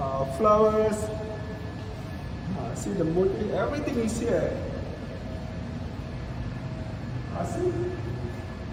See the motif, everything is here. See?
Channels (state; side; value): identical; both; correlation 1.00